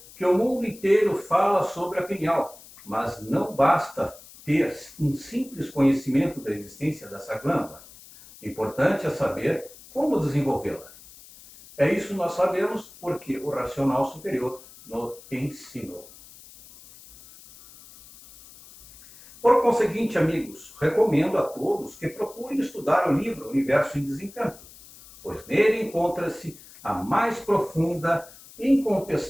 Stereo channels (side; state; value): left; noise; hiss, 20 dB below the sound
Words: que o mundo inteiro fala sobre a pineal, mas não basta ter um simples conhecimento da existência dessa glândula. Importante é saber como desenvolvê-la. É isso que nós sabemos porque o racional superior nos ensinou. Por conseguinte, amigos, recomendo a todos que procurem estudar o livro Universo em Desencanto, pois nele encontra-se a mais profunda e